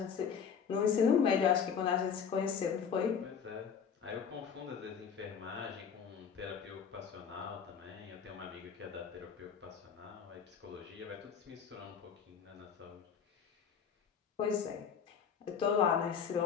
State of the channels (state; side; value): quieter; right; 7.0 dB